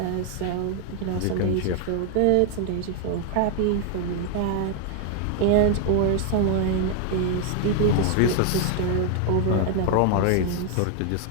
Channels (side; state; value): both; different; correlation 0.00